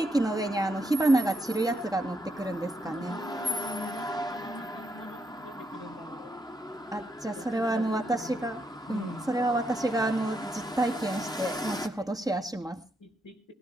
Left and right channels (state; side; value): normal; both; correlation 0.79